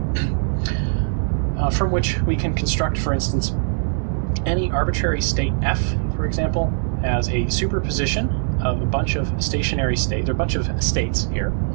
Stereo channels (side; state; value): left; silent; digital silence